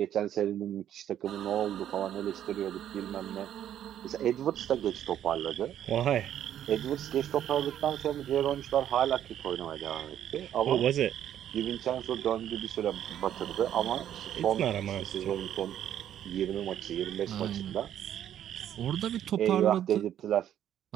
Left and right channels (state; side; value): quieter; left; 10.7 dB